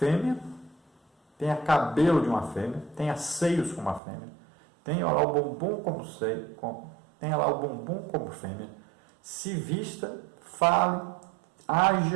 tenha cabelo de uma fêmea, tenha seios como uma fêmea, tenha lá o bumbum como seio, tenha lá o bumbum como fêmea, se vista, fale,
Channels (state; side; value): drops out; left; at 4.0 s